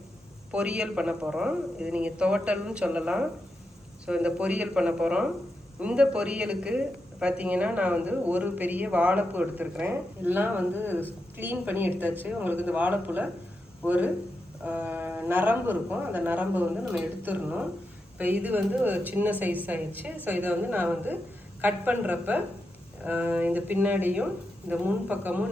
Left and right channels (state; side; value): normal; both; correlation 0.87